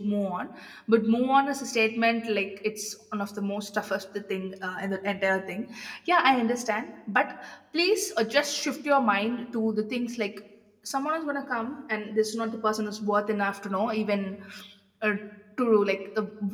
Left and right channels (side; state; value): both; identical; correlation 1.00